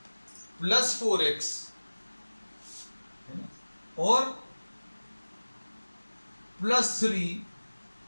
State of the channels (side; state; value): both; inverted; correlation -1.00